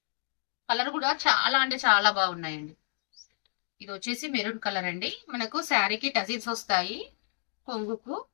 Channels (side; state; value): right; silent; 58 dB below the other